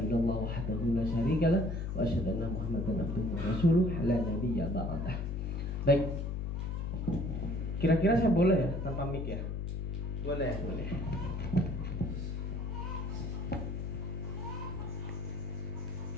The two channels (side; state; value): left; noise; hum, 3 dB below the sound